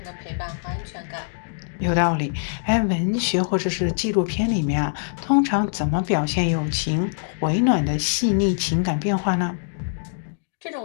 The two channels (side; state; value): right; silent; digital silence